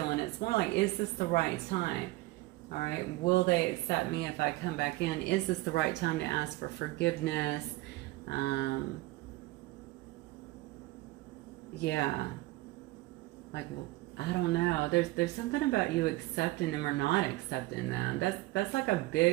It's more like, is this the right time? All right, will they accept me if I come back in? Is this the right time to ask for forgiveness? Yeah, like, well, I don't know. There's something about you accepting them or not accepting them. That's like a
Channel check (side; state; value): left; quieter; 19.6 dB